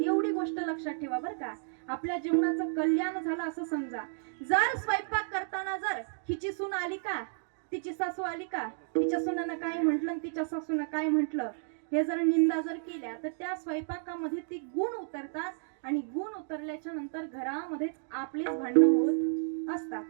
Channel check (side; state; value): left; silent; digital silence